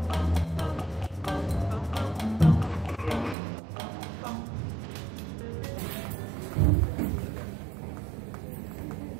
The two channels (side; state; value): left; drops out; at 3.4 s